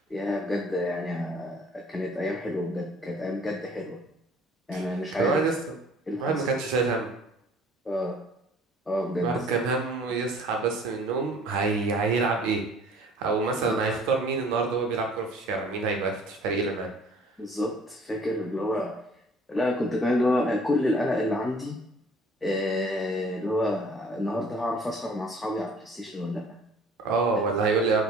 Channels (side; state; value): both; normal; correlation 0.52